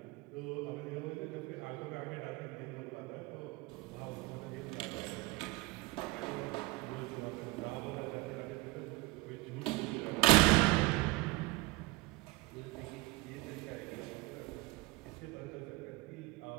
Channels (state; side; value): quieter; left; 22.2 dB